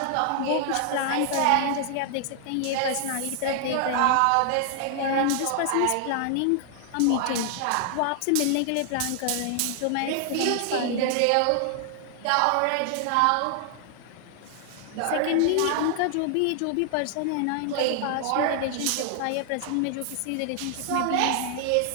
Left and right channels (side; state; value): both; different; correlation 0.00